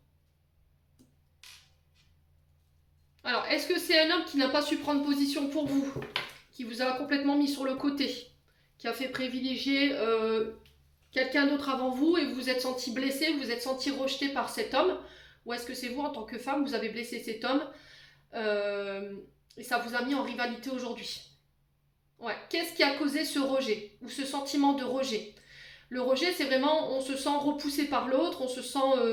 Alors, est-ce que c'est un homme qui n'a pas su prendre position pour vous, qui vous a complètement mis sur le côté, qui a fait privilégier quelqu'un d'autre avant vous et vous vous êtes senti blessé, vous vous êtes senti rejeté par cet homme? Ou est-ce que c'est vous, en tant que femme, vous avez blessé cet homme et ça vous a mis en rivalité aujourd'hui? Ouais. Qu'est-ce qui a causé ce rejet ou ce sentiment de rejet? Le rejet, c'est vraiment, on se sent repoussé par l'autre, on se sent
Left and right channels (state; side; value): identical; both; correlation 1.00